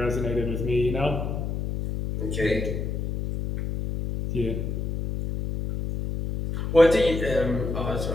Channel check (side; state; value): left; noise; hum, 3 dB below the sound